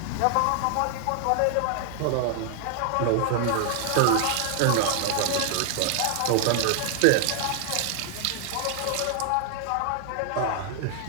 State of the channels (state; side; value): different; both; correlation 0.00